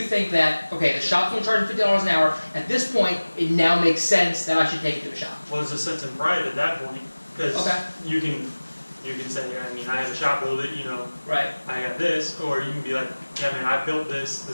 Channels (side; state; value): both; inverted; correlation -1.00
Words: think that, okay, the shop's going to charge $50 an hour, at this point it now makes sense that I should take it to a shop? Well, there's a sense of pride at that point because Okay. you can say, I mean, I have a shop build it, you know, Right. I got this, or you can be like, yeah, man, I built this.